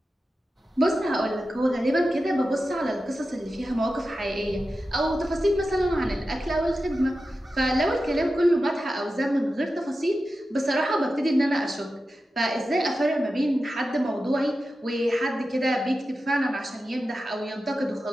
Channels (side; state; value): both; normal; correlation 0.92